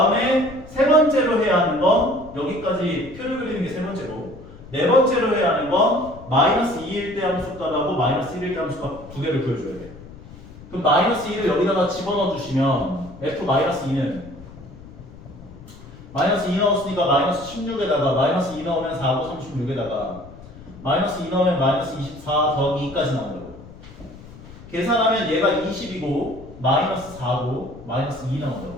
세 번째로 해야 하는 건 여기까지 표를 그리는 게 세 번째고 네 번째로 해야 하는 건 마이너스 2일 때 함수값하고 마이너스 1일 때 함수값 두 개를 구해줘야 돼. 그럼 마이너스 2를 여기다가 집어넣어 주시면 f 마이너스 2는 마이너스 2 넣었으니까 마이너스 16에다가 마이너스 2 넣으면 4고 36에다가 마이너스 2 넣으면 마이너스 24 더하기 2까지 나온다고. 계산하면 얘가 20이고 마이너스 4고 마이너스 2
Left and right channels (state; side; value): noise; left; rumble, 18 dB below the sound